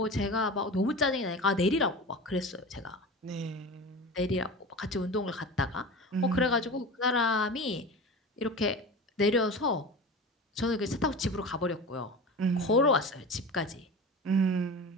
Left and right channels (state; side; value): normal; both; correlation 0.31